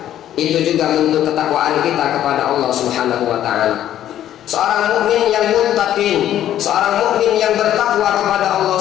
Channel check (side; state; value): right; quieter; 11.7 dB